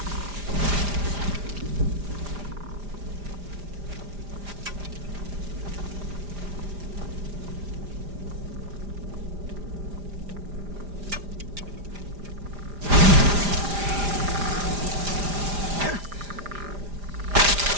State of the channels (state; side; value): late; left; 5.0 ms